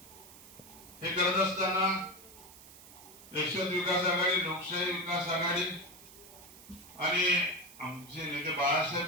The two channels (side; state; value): right; noise; hiss, 19 dB below the sound